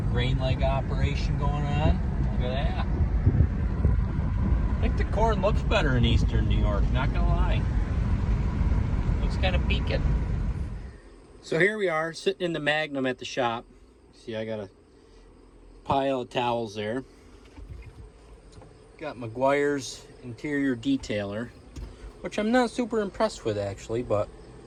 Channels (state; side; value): identical; both; correlation 1.00